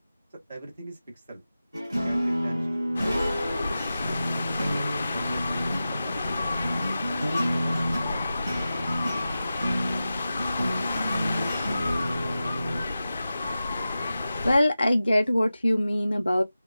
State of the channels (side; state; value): both; inverted; correlation -0.94